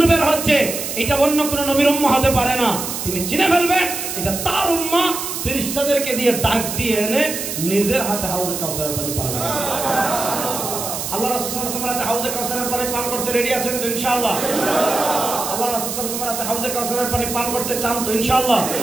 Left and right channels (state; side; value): noise; right; hiss, 5 dB below the sound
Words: বের হচ্ছে, এটা অন্য কোন নবীর উম্মাহ হতে পারে না। তিনি চিনে ফেলবেন এটা তার উম্মাহ। ফেরেশতাদেরকে দিয়ে ডাক দিয়ে এনে নিজের হাতে হাউজে কাউসারের পানি পান করবে। আল্লাহ রাসূল সাল্লাল্লাহু আলাইহি ওয়াসাল্লাম হাউজে কাউসারের পানি পান করতে রেডি আছেন তো ইনশাআল্লাহ? আল্লাহ রাসূল সাল্লাল্লাহু আলাইহি ওয়াসাল্লাম হাউজে কাউসারের পানি পান করতে চান তো ইনশাআল্লাহ?